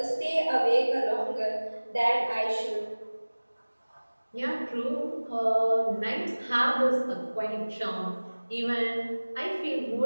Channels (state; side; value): inverted; both; correlation -1.00